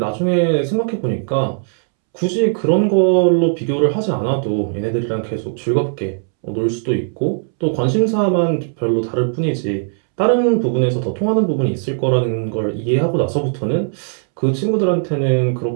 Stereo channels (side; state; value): left; silent; 67 dB below the other